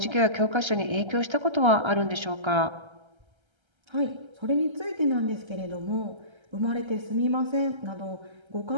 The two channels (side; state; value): left; late; 1.3 ms